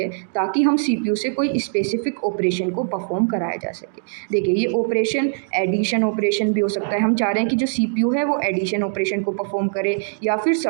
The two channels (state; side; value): silent; left; digital silence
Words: ताकि हम सीपीयू से कोई स्पेसिफिक ऑपरेशन को परफॉर्म कराया जा सके। देखिए, ये ऑपरेशन एडिशन ऑपरेशन भी हो सकता है। हम चाह रहे हैं कि जो सीपीयू है वो एडिशन ऑपरेशन को परफॉर्म करे, या फिर